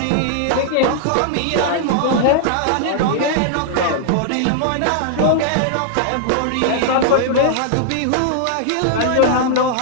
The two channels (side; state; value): both; different; correlation -0.01